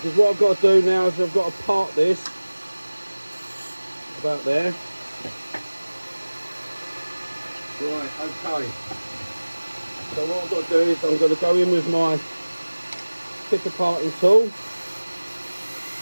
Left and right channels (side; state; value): both; inverted; correlation -1.00